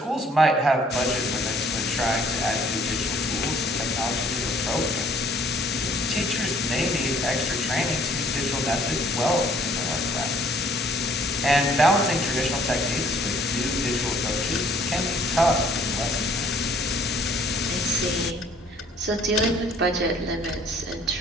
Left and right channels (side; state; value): both; normal; correlation 0.58